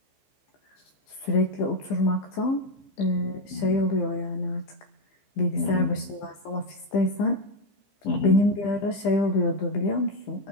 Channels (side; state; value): right; late; 15 ms